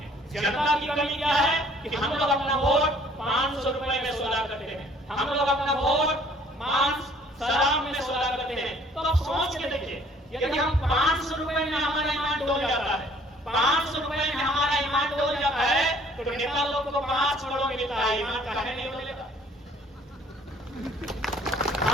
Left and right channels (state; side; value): normal; both; correlation 0.58